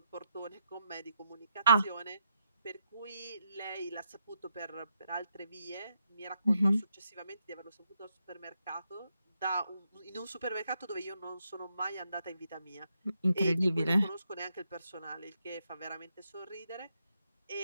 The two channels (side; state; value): both; inverted; correlation -0.80